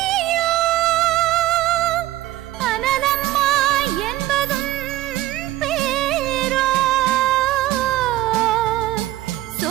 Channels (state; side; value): quieter; left; 15.3 dB